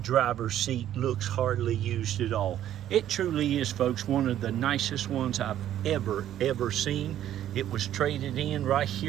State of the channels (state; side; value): quieter; left; 11.6 dB